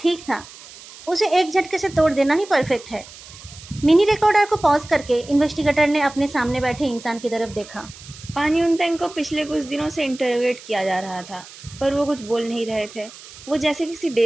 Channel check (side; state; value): right; noise; hiss, 18 dB below the sound